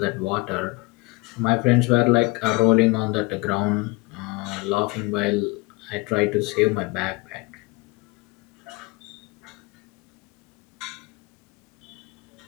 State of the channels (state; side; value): quieter; right; 24.9 dB